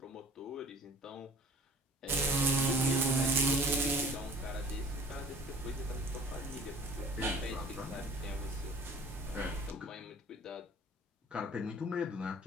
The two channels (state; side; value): normal; both; correlation 0.48